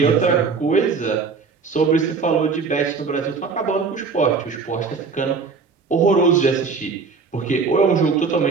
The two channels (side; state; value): left; quieter; 5.0 dB